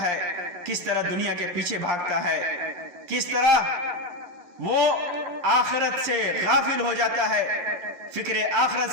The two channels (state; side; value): late; left; 11 ms